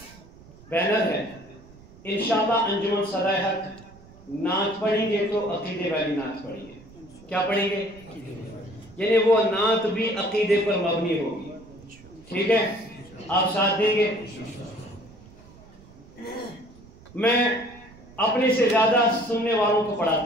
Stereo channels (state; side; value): noise; right; rumble, 22 dB below the sound